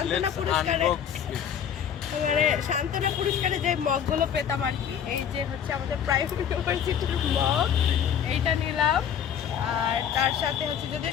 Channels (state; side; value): quieter; right; 8.6 dB